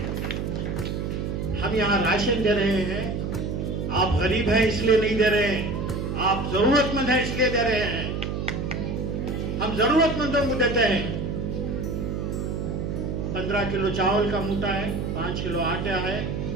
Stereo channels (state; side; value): noise; right; hum, 2 dB below the sound